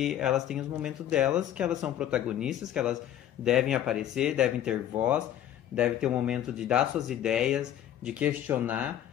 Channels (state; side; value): quieter; right; 11.3 dB